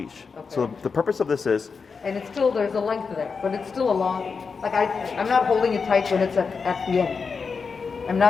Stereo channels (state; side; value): quieter; right; 5.2 dB